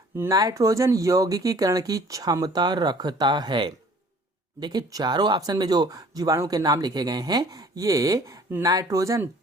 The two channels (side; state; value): both; normal; correlation 0.53